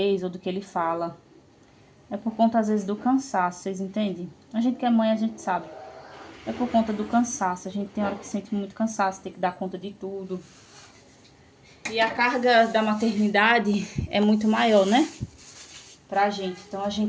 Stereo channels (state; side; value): identical; both; correlation 1.00